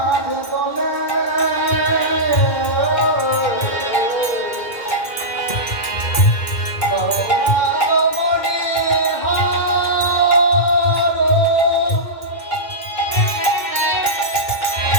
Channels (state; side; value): late; right; 2.2 ms